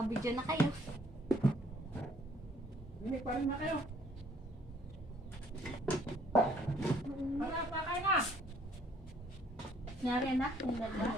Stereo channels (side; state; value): both; normal; correlation 0.62